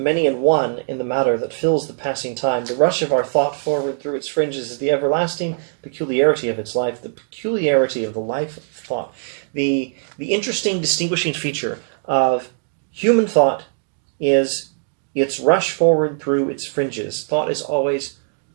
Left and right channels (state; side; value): silent; left; digital silence